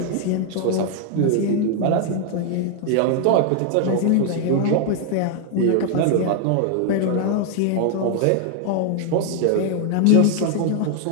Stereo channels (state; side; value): different; both; correlation 0.00